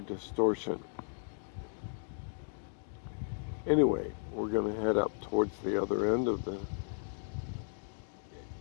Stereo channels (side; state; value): right; silent; 54 dB below the other